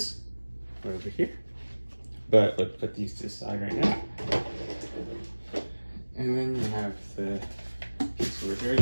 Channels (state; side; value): inverted; both; correlation -1.00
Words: over here. But let's put these to the side right now. And then you have the piece over here